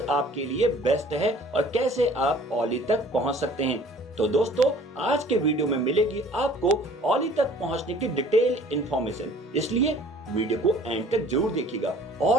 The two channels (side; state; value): both; normal; correlation 0.51